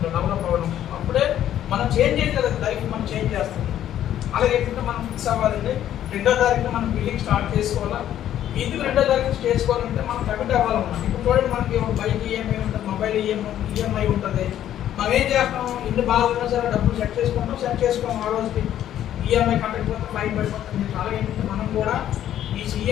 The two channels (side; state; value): right; quieter; 11.4 dB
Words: డెవలప్ అవ్వడం. అప్పుడే మనం చేంజ్ చేయాలి కదా, లైఫ్ మనం చేంజ్ చేస్తుంది. అలాగే ఏంటంటే మనం ఫిక్స్ అవ్వాలండి. 2వ తారీఖున మనం బిల్లింగ్ స్టార్ట్ చేసుకోవాలా. ఎందుకు 2వ తారీఖు చేసుకోవాలంటే మనం కమిట్ అవ్వాలన్నమాట. ఇప్పుడు చూడండి మనకి బైక్ ఈఎంఐ ఉంటుంది, మొబైల్ ఈఎంఐ ఉంటుంది. మనం ఏం చేస్తాం, ఇల్లు బాగా ఉన్నా సరే డబ్బులు సెట్ చేసుకోం ఆ రోజుకి ఈఎంఐ కట్టకపోతే ఫైన్ పడిపోతుంది. అలాగే ఏంటంటే మనం కూడా ఈ